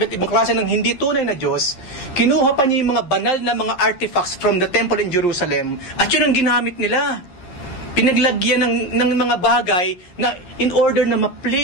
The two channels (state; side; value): late; right; 11 ms